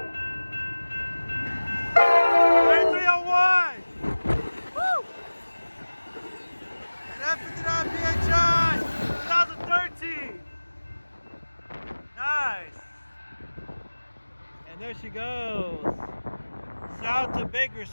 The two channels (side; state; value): both; inverted; correlation -1.00